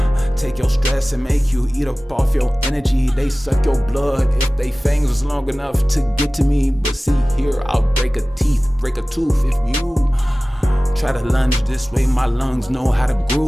Take your stress and make you eat up off your energy. They suck your blood if they fangs was long enough to get to me. But see here, I'll break a tooth if you try to lunge this way. My lungs know how to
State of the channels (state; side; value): normal; both; correlation 0.98